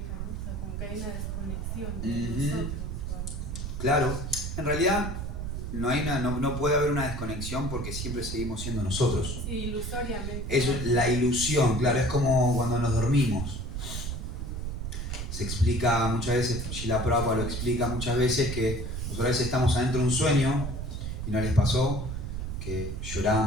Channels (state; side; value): noise; right; rumble, 4 dB below the sound